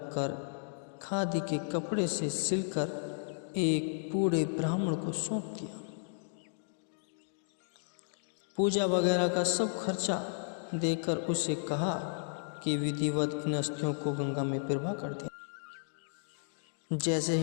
खादी के कपड़े से सिलकर एक बूढ़े ब्राह्मण को सौंप दिया। पूजा वगैरह का सब खर्चा देकर उसे कहा कि विधिवत इन अस्थियों को गंगा में प्रवाह कर दिया। जैसे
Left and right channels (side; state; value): right; silent; digital silence